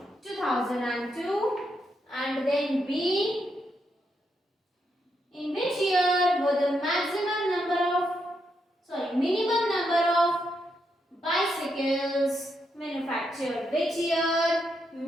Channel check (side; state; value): both; normal; correlation 0.81